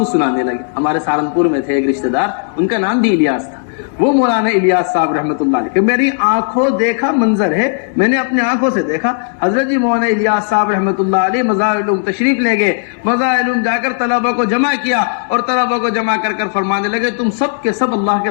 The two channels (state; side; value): silent; right; digital silence